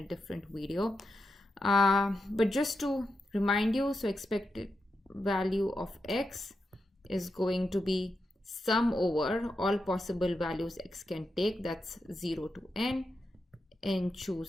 different video. But just to remind you, so expected value of x is going to be sum over all possible values x can take. That's 0 to n. And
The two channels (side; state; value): both; normal; correlation 0.87